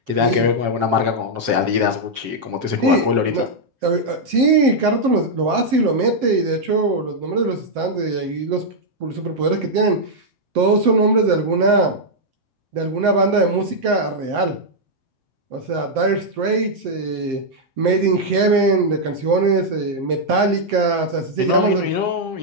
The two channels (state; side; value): late; left; 7.6 ms